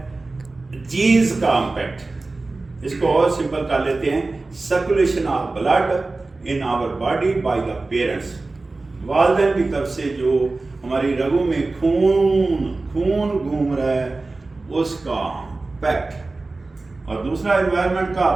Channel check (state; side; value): quieter; left; 3.4 dB